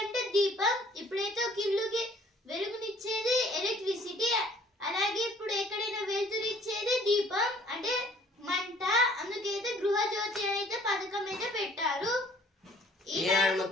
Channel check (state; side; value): normal; both; correlation 0.56